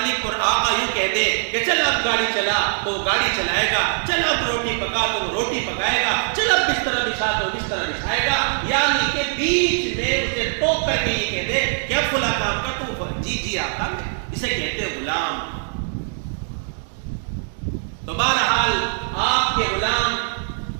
اور آقا یوں کہہ دے کہ چل اب گاڑی چلا تو وہ گاڑی چلائے گا، چل اب روٹی پکا تو وہ روٹی پکائے گا، چل اب بستر بچھا تو بستر بچھائے گا، یعنی کہ بیچ میں اسے ٹوک کر کے یہ کہہ دے کہ اب فلاں کام کر تو جی آقا، اسے کہتے ہیں غلام۔ تو بہرحال آپ کے غلام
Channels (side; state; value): left; silent; 61 dB below the other